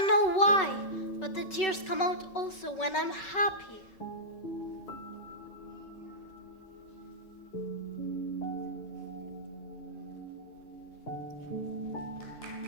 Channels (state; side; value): late; right; 5.3 ms